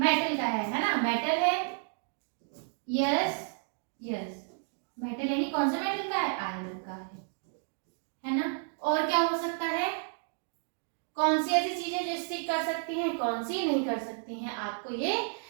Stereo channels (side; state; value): left; silent; 57 dB below the other